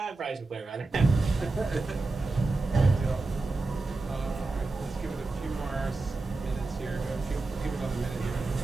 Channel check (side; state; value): left; quieter; 3.4 dB